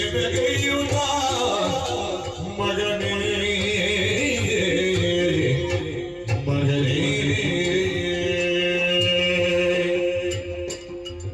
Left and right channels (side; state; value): both; identical; correlation 1.00